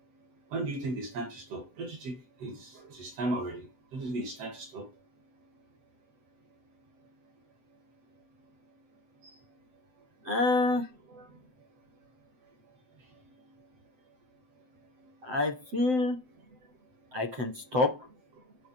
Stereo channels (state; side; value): late; left; 7.8 ms